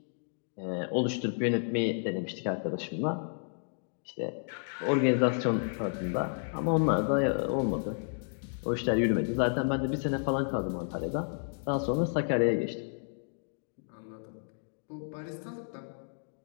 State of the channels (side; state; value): right; silent; digital silence